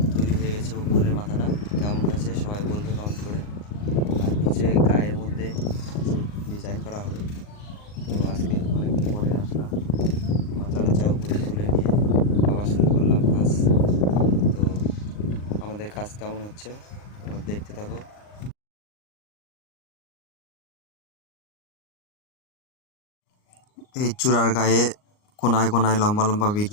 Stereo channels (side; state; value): right; late; 39 ms